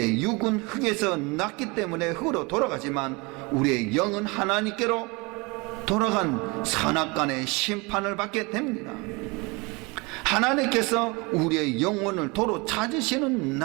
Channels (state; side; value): quieter; left; 27.0 dB